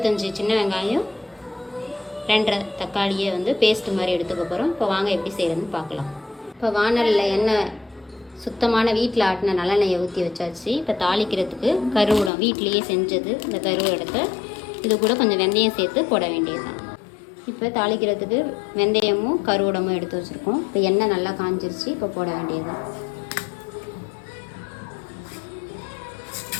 சின்ன வெங்காயம், 2 தக்காளியை வந்து பேஸ்ட்டு மாதிரி எடுத்துக்க போகிறோம். இப்போ வாங்க எப்படி செய்கிறதுன்னு பார்க்கலாம். இப்போ வானலில் எண்ணெய் சுத்தமான வீட்டில் ஆட்டின நல்லெண்ணெயை ஊற்றி வச்சாச்சு. இப்போ தாளிக்கிறதுக்கு கருவடம் வீட்டிலையே செஞ்சது, இந்த கருவடத்தை இது கூட கொஞ்சம் வெந்தயம் சேர்த்து போட வேண்டியது தான். இப்போ தாளிக்கிறதுக்கு வெந்தயமும் கருவடமும் எடுத்து வச்சுருக்கோம். இப்போ எண்ணெய் நல்லா காஞ்சிருச்சு, இப்போ போட வேண்டியது தான்.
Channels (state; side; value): drops out; right; at 12.3 s